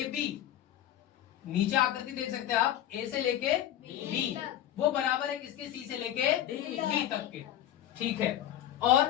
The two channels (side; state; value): right; quieter; 11.9 dB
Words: नीचे आकृति देख सकते हैं आप, A से लेके B, वो बराबर है किसके? C से लेके D तक के। ठीक है।